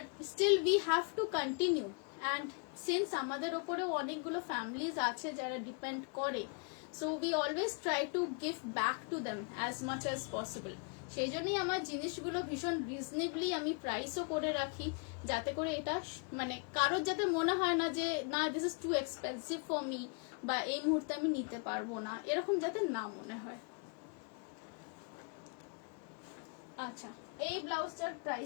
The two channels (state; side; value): quieter; right; 38.1 dB